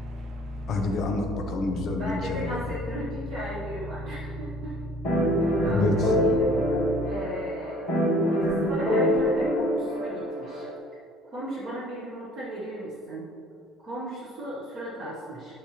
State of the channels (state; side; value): normal; both; correlation 0.54